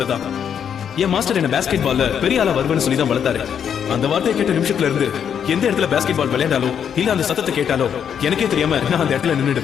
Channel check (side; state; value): right; quieter; 8.1 dB